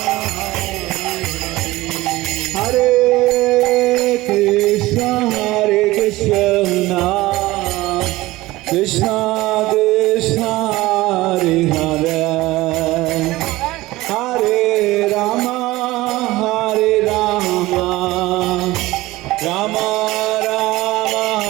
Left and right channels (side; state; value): left; quieter; 18.6 dB